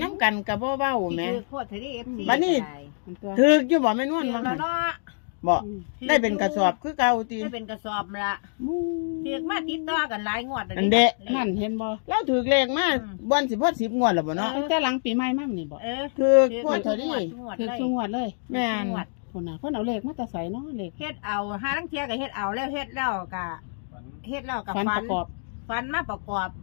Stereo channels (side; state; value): right; silent; digital silence